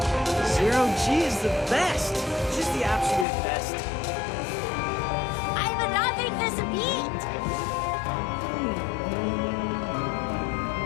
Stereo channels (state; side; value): drops out; right; at 3.2 s